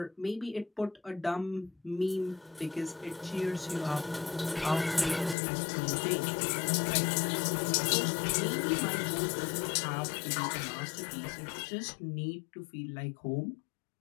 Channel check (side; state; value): right; drops out; at 5.4 s